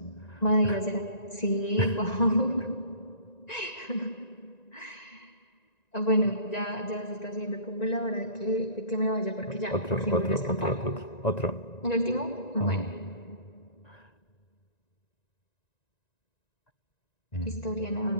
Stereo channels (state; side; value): late; right; 1.9 ms